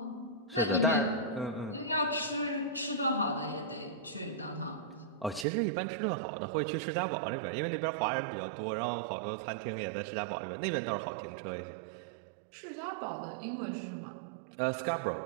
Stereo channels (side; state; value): left; drops out; at 5.5 s